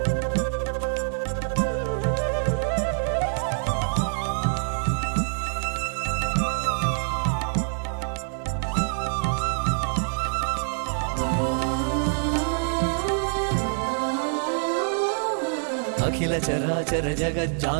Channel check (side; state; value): left; silent; digital silence